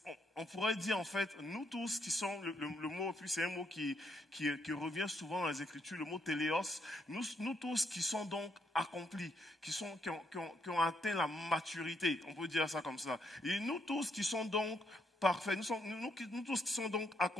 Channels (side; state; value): both; normal; correlation 0.76